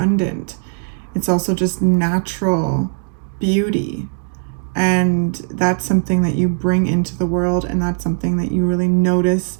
It's also just natural beauty, and that's something that you bring into the world, and that's something that you really notice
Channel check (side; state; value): left; silent; 56 dB below the other